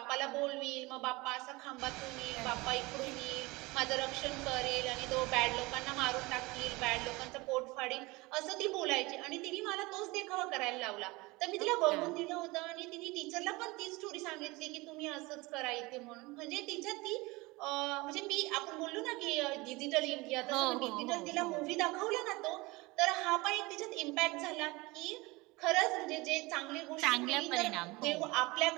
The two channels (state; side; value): quieter; left; 23.0 dB